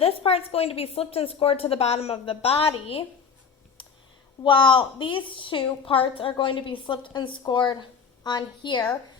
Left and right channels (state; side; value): quieter; right; 6.0 dB